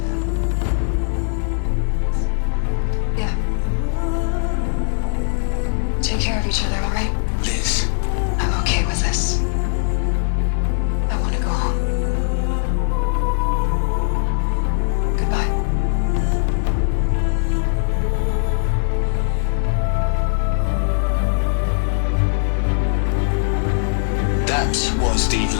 see you around. Yeah. Take care of each other, alright? Liz. I'm okay with this. I want to go home. Goodbye. That was the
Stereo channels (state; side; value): silent; right; digital silence